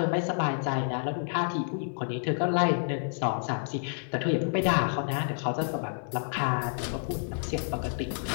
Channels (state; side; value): silent; right; digital silence